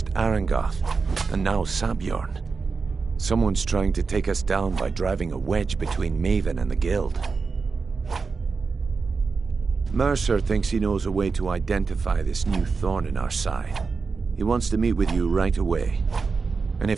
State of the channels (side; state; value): left; quieter; 4.7 dB